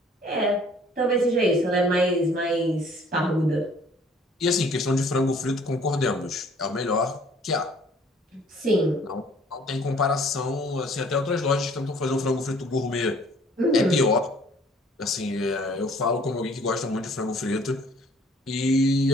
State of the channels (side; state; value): both; normal; correlation 0.56